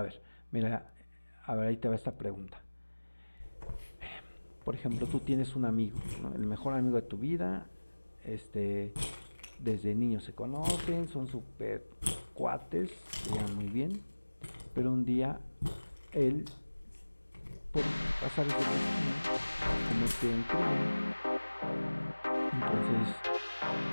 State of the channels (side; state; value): both; inverted; correlation -1.00